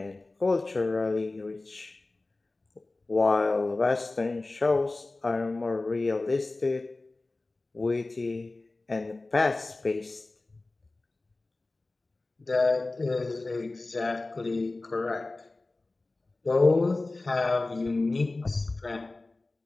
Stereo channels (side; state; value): right; quieter; 3.2 dB